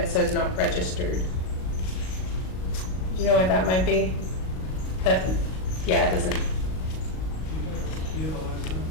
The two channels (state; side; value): late; right; 38 ms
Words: says not registered? Do you know what that might be? Yeah, it doesn't. Do you have a last